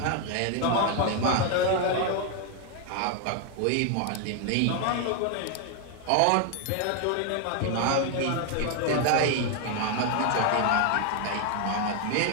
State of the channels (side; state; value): both; different; correlation 0.01